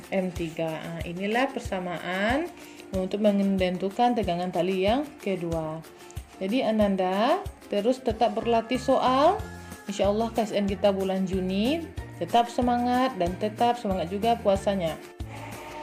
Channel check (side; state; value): both; identical; correlation 1.00